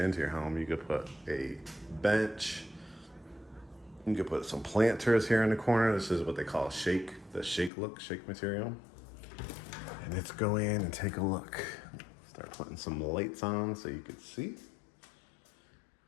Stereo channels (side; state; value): right; drops out; at 7.7 s